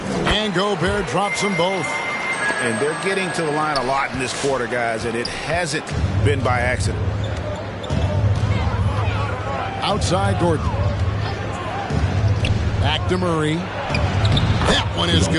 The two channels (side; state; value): both; identical; correlation 1.00